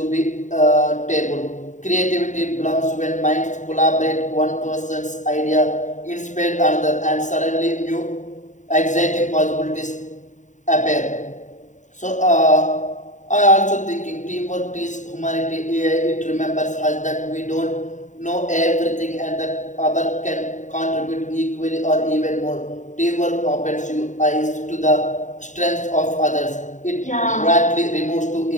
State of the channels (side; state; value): right; late; 0.36 ms